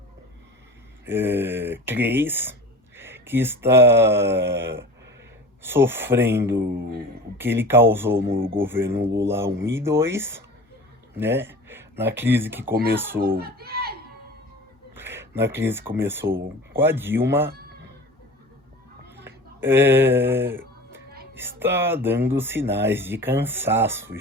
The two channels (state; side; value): normal; both; correlation 0.37